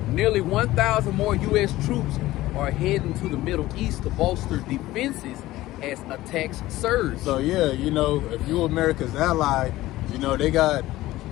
Nearly 1,000 more U.S. troops are heading to the Middle East to bolster defenses as attacks surge. So yeah, you know, if you're America's ally, you know, they got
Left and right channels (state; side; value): quieter; right; 16.7 dB